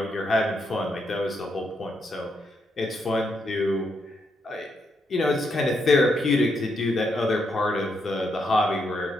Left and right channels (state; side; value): normal; both; correlation 0.79